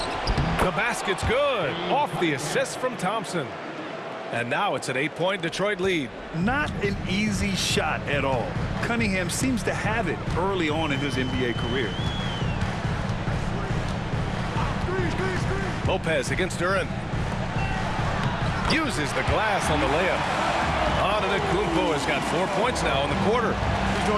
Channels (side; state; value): both; identical; correlation 1.00